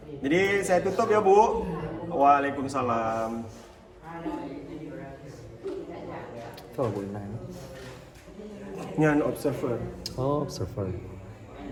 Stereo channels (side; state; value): both; identical; correlation 1.00